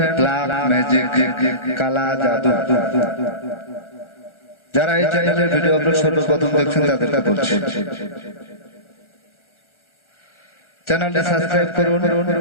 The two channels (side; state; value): right; late; 1.4 ms